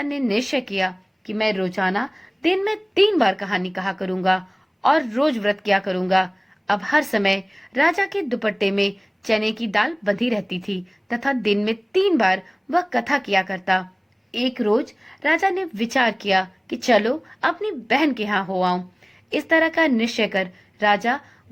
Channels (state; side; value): identical; both; correlation 1.00